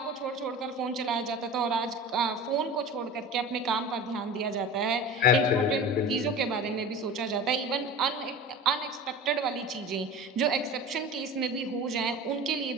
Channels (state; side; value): normal; both; correlation 0.34